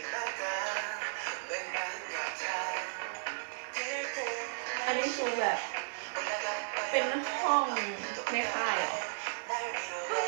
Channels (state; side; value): silent; left; digital silence